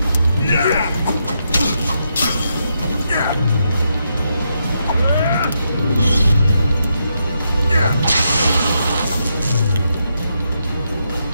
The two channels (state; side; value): inverted; both; correlation -0.81